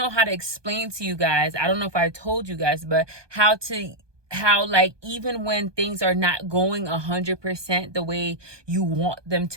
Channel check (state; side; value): late; left; 1.2 ms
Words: how to explain to you guys. I don't know if I told you guys, but how like even when things are not going 100% the way you want them